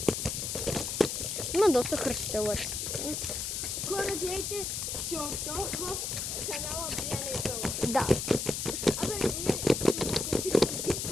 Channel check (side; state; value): left; noise; hiss, 3 dB below the sound